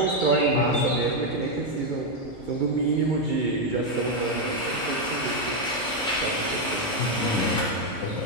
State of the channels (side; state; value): both; normal; correlation 0.03